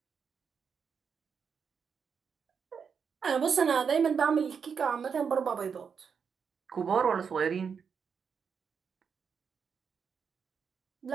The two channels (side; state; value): left; quieter; 6.4 dB